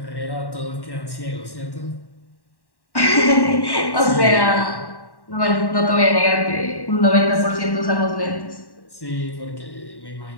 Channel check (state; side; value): late; right; 1.1 ms